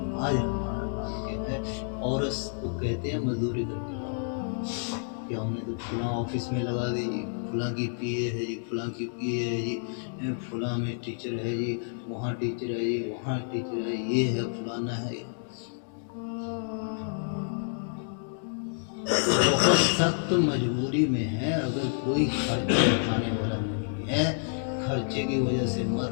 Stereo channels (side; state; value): right; silent; digital silence